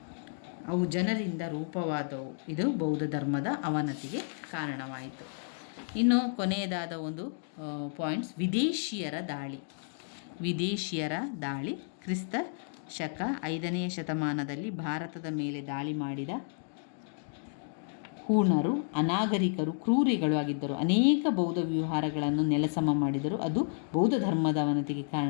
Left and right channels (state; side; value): silent; right; digital silence